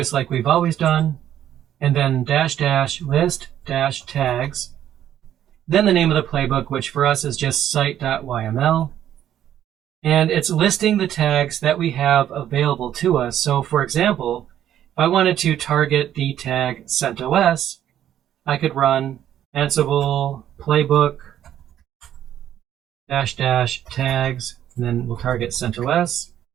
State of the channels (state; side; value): quieter; left; 11.0 dB